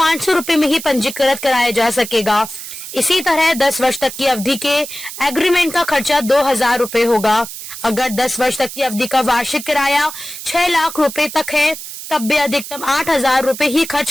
रुपए में ही पंजीकृत कराया जा सकेगा। इसी तरह 10 वर्ष तक की अवधि के एग्रीमेंट का खर्चा 2000 रुपए होगा। अगर 10 वर्ष तक की अवधि का वार्षिक किराया 6 लाख रुपए तक है, तब भी अधिकतम 8000 रुपए ही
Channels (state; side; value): noise; right; hiss, 11 dB below the sound